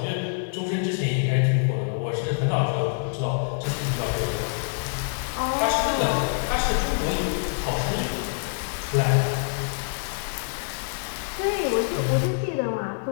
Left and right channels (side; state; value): right; silent; 61 dB below the other